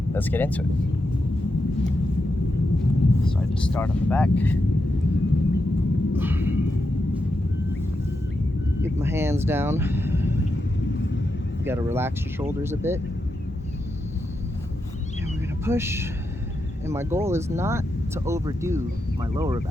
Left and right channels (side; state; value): both; normal; correlation 0.86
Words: Let's get into it. So I just start on the back. Get my hands down. You gotta relax your shoulders a bit. And we're gonna push. And my goal is not to overdo my lower